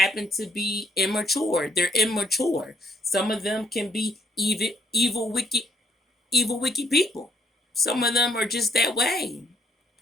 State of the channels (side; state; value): both; normal; correlation 0.67